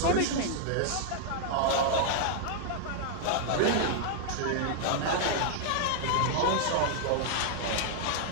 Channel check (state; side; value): different; both; correlation -0.01